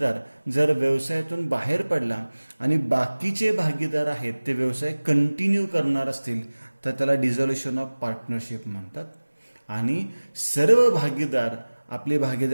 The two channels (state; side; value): inverted; both; correlation -1.00